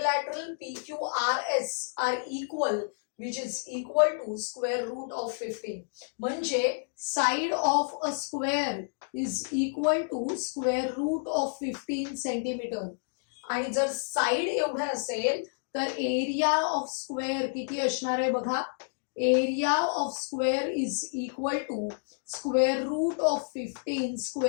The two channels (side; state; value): right; silent; digital silence